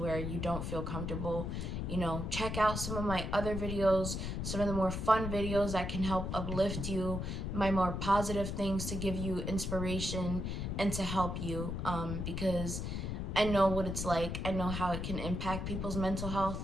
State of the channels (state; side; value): noise; left; rumble, 3 dB below the sound